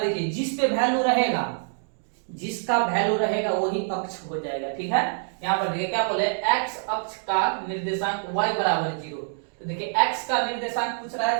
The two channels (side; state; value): left; silent; digital silence